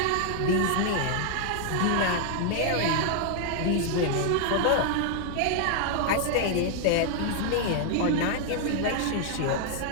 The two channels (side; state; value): both; different; correlation 0.00